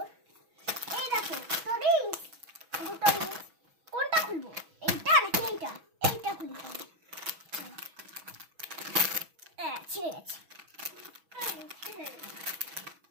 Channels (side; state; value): left; late; 6.1 ms